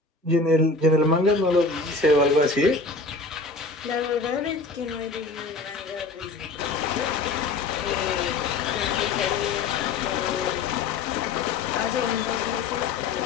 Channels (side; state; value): right; quieter; 3.8 dB